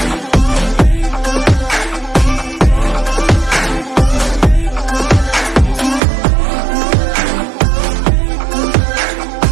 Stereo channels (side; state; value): left; drops out; at 6.0 s